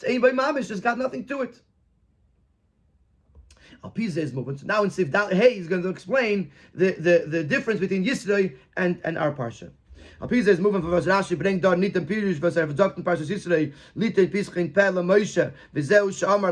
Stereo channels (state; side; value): identical; both; correlation 1.00